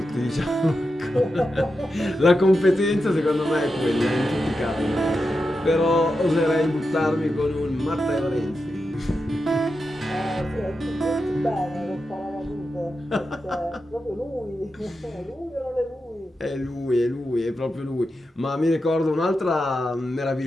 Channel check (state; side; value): normal; both; correlation 0.89